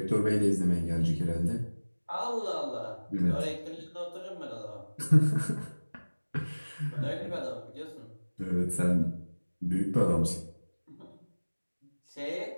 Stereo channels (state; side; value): inverted; both; correlation -1.00